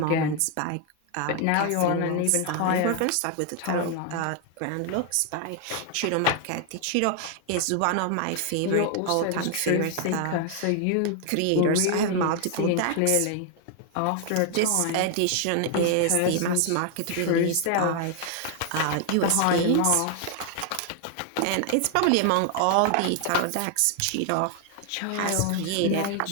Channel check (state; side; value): different; both; correlation 0.00